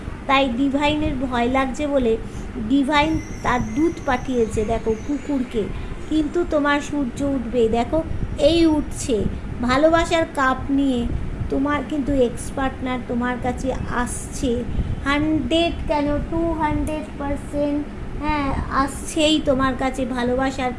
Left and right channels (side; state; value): both; identical; correlation 1.00